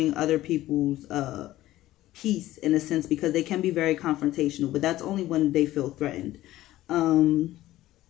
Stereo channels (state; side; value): quieter; right; 15.4 dB